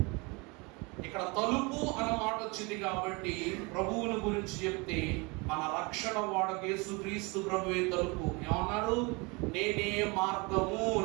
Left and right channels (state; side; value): quieter; left; 27.9 dB